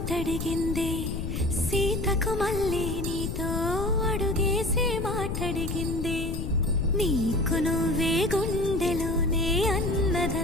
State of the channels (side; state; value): left; noise; rumble, 3 dB below the sound